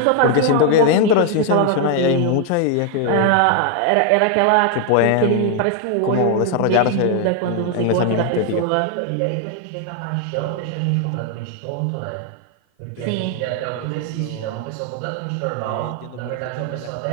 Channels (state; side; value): different; both; correlation 0.00